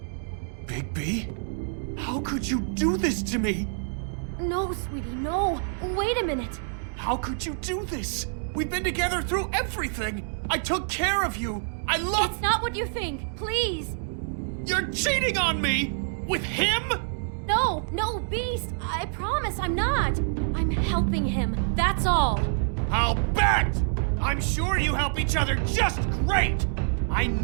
Bigby? How could you do this to me? No, sweetie, no. Wait a minute. How could you do this? We've been together through everything. I took care of you. I love— It's not what you think. Please. You're cheating on me! With him? No, Beast. I promise I'm not. I'm helping him. That's all. I'll bet! I'm sure you help each other just great! I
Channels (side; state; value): left; silent; digital silence